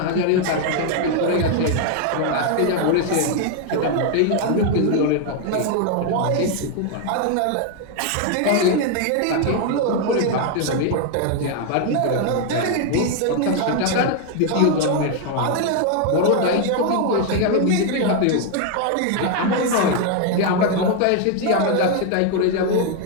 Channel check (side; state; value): both; different; correlation 0.01